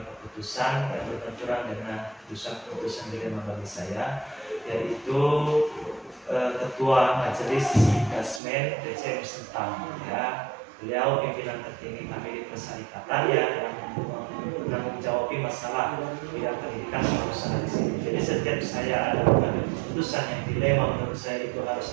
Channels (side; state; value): left; drops out; at 8.4 s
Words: keputusan yang berbenturan dengan keputusan dilema bagi saya, yaitu Ketua Majelis Dasmen DCM Sentang ya. Beliau pimpinan tertinggi kami di persyarikatan ya, yang menanggung jawab masalah bidang pendidikan usaha di sini. Jadi setiap saya ada mengambil keputusan yang dilema menurut saya itu harus